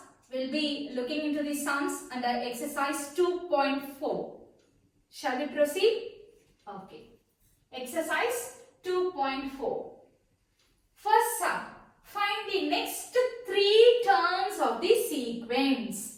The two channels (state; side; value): identical; both; correlation 1.00